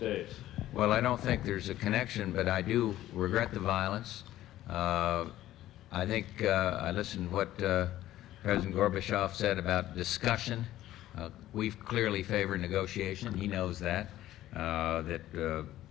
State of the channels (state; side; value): quieter; right; 14.1 dB